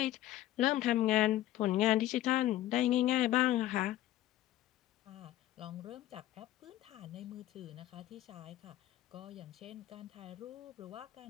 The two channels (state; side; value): quieter; right; 14.3 dB